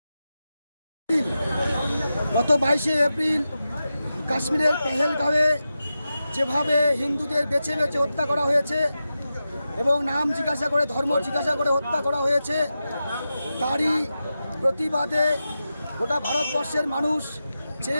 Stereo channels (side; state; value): both; inverted; correlation -0.91